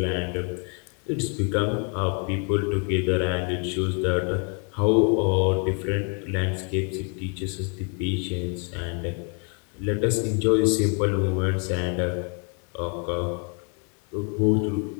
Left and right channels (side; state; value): right; quieter; 37.8 dB